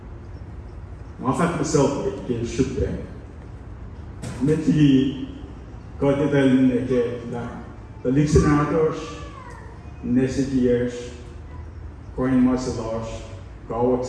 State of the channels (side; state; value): both; identical; correlation 1.00